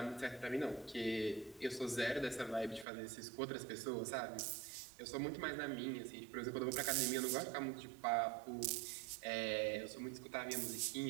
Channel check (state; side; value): drops out; left; at 2.9 s